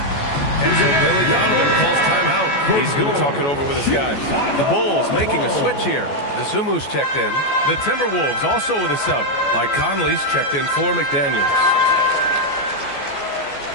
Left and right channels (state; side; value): late; right; 14 ms